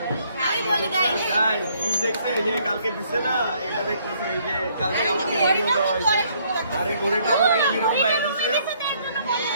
আমি বলি গাইস গাইস কি দেখছে এই যে কালকে দিছে না, এটা দেখতেছে এই যে কালকে আমাকে ভিডিও দেওয়া হয়েছে। আর এই ঘড়িটা আমাকে বিরোধ ভাইয়া দিছে।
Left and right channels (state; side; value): inverted; both; correlation -0.66